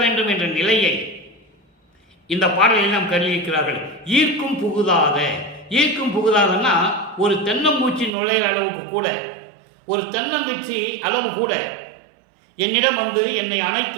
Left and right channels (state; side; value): drops out; left; at 8.1 s